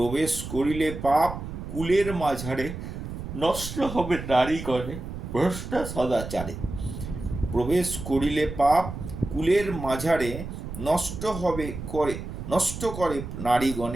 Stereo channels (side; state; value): right; noise; rumble, 8 dB below the sound